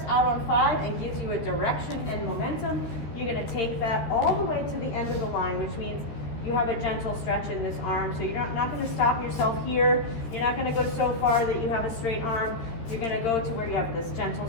out on 5 and gives you a direction and momentum, you're going to take that all the way to the end of the line, which means you have a gentle stretch in this arm. So you're not going to stop yourself here. You're not going to go so far that you have a straight arm. You're going to go to where you have this gentle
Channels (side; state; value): right; late; 13 ms